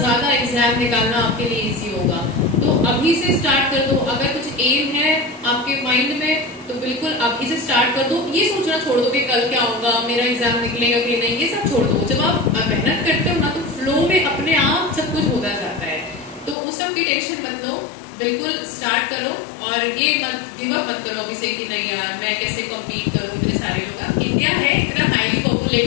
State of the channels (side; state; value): right; drops out; at 16.6 s